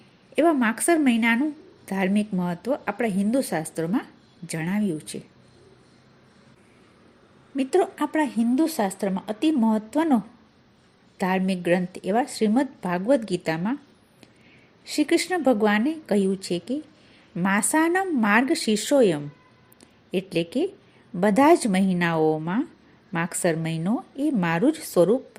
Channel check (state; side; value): identical; both; correlation 1.00